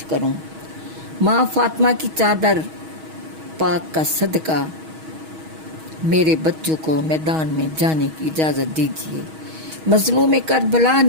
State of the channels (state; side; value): late; left; 6.3 ms